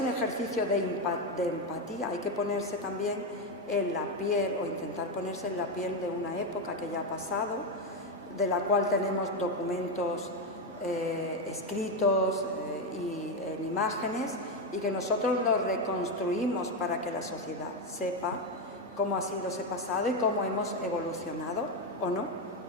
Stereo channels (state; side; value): normal; both; correlation 0.09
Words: ejercicio de empatía, hay que ponerse también en la piel, o intentar ponerse en la piel de una época que ya ha pasado, de la cual tenemos documentos escritos y en imágenes, y que nosotros los reconstruimos para que la sociedad sepa cómo ha sido ese pasado y cómo hemos evolucionado, o no,